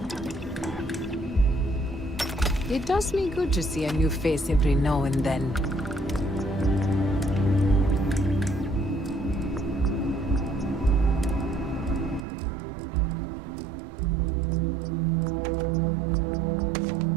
It does me good to see a new face every now and then.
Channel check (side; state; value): left; drops out; at 12.2 s